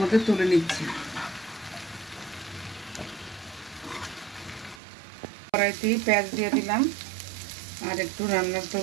তুলে নিচ্ছি। কড়াইতেই পেঁয়াজ দিয়ে দিলাম আর একটু রান্নার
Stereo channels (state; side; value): drops out; left; at 4.8 s